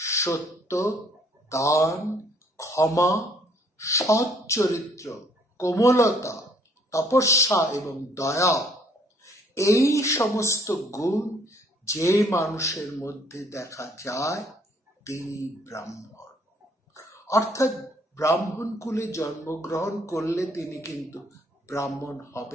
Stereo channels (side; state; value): both; normal; correlation 0.63